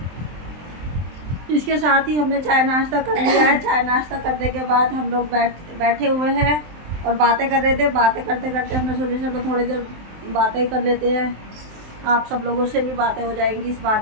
इसके साथ ही हमने चाय नाश्ता कर लिया है। चाय नाश्ता करने के बाद हम लोग बैठे हुए हैं और बातें कर रहे थे। बातें करते करते हमने सोचा चलो थोड़ी देर बातें कर लेते हैं, आप सब लोगों से भी बातें हो जाएंगी इस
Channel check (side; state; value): left; late; 23 ms